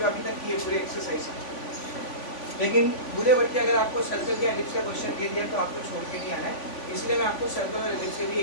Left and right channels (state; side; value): late; right; 3.5 ms